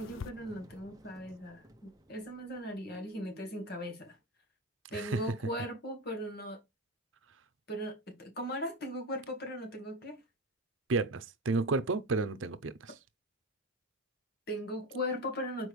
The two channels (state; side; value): normal; both; correlation 0.22